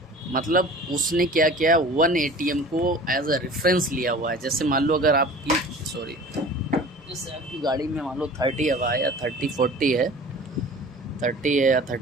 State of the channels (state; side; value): normal; both; correlation 0.42